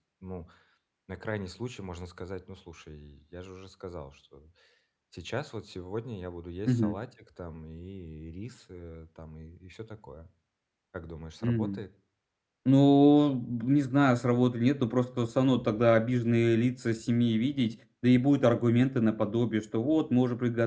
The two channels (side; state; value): both; identical; correlation 1.00